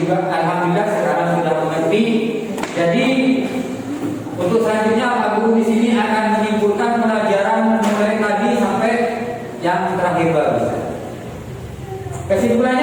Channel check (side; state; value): both; identical; correlation 1.00